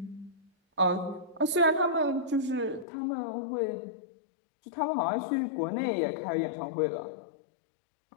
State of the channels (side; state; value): right; drops out; at 2.9 s